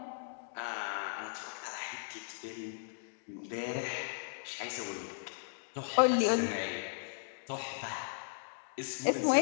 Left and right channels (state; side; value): silent; right; digital silence